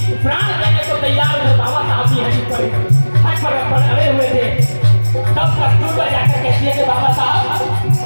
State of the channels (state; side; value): inverted; both; correlation -1.00